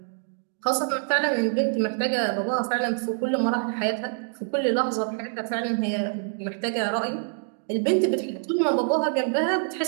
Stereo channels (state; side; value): silent; left; 61 dB below the other